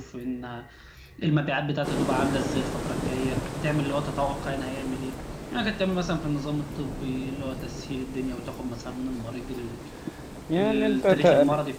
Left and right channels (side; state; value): both; identical; correlation 1.00